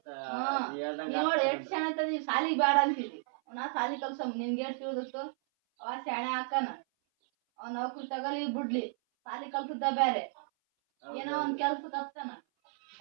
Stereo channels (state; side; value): silent; left; 56 dB below the other